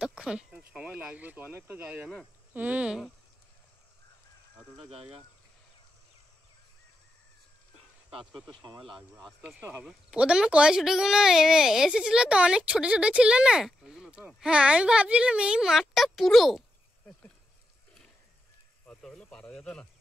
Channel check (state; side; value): normal; both; correlation 0.85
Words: সময় লাগবে তো, অনেকটা জায়গা না। এতটা জায়গা কাজ করতে সময় লাগবে, আস্তে আস্তে হবে। প্রথমে কয়ছুটিগুলো এসেছিল তো, অনেক ছোট ছোট ছিল না? ওইগুলো তো হ্যাঁ, আমি ভাবছিলাম এই মাঠটা পুরো। অত হলে পারা যেত না।